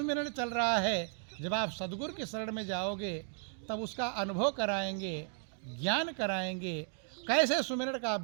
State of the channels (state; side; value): silent; left; 55 dB below the other